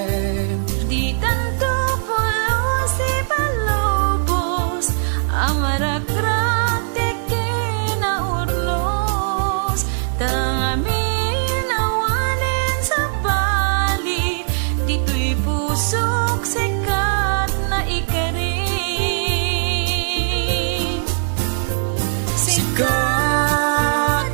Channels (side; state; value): left; silent; digital silence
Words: Di tanto pulo si palobos, amarakrak teke na urlos. Tangamin awanin sa bali, dito'y pusok sikat na ikarin. Sikat